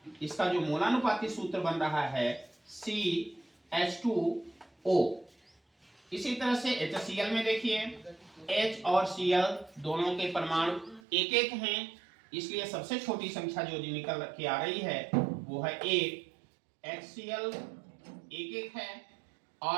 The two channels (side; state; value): left; drops out; at 11.0 s